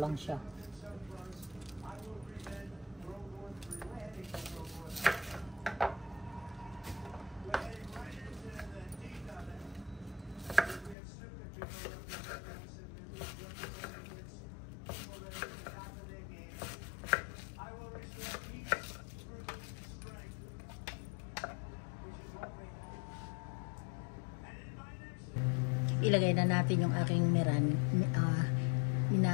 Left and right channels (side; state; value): right; drops out; at 11.0 s